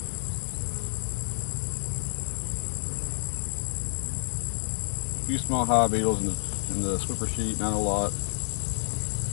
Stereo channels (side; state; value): right; silent; digital silence